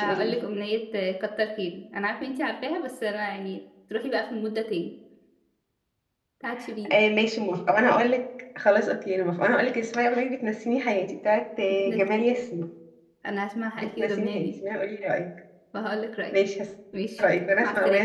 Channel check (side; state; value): both; identical; correlation 1.00